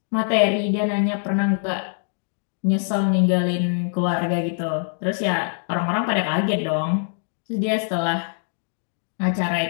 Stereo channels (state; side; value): silent; right; digital silence